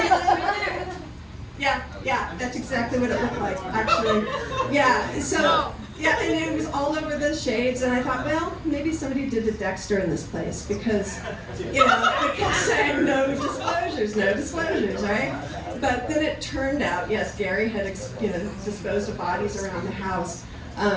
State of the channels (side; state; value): both; identical; correlation 1.00